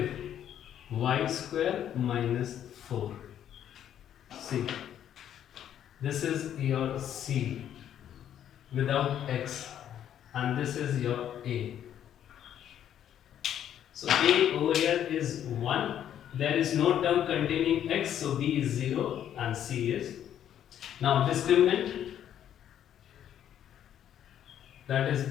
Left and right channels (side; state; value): right; quieter; 10.3 dB